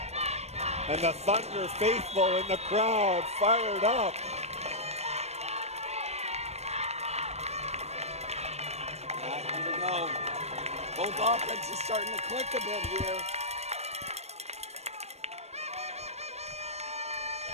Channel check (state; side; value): late; left; 0.31 ms